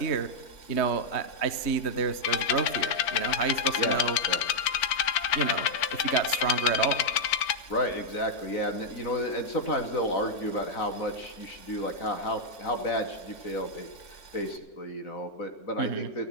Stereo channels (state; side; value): late; right; 4.4 ms